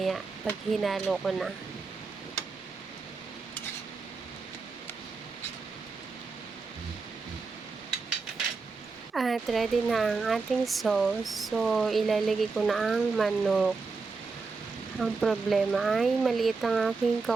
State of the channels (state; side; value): quieter; left; 4.4 dB